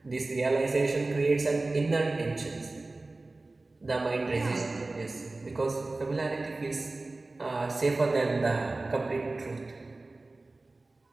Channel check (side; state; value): left; quieter; 3.2 dB